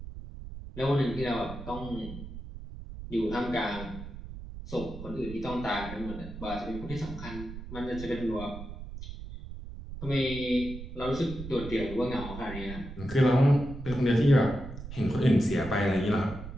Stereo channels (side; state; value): right; noise; rumble, 11 dB below the sound